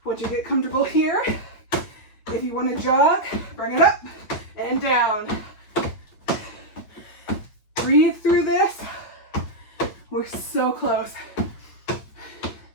Once you get comfortable here, if you want to jog, bring it up and down. Breathe through this. We're so close.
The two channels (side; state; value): right; late; 9.2 ms